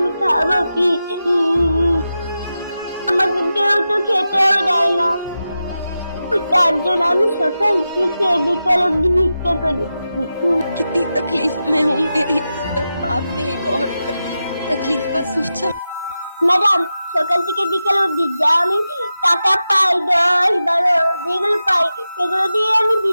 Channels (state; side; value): inverted; both; correlation -0.91